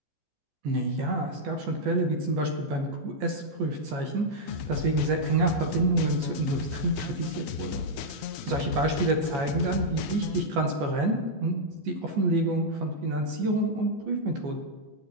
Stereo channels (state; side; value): late; left; 14 ms